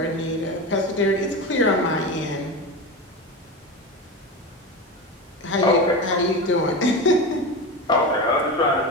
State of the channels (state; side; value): normal; both; correlation 0.23